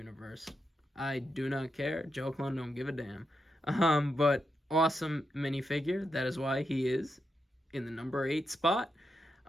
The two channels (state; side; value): normal; both; correlation 0.85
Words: I do not care. Joe Clone don't give a damn. But awesome minifigure. That is why he is in the number 8 spot.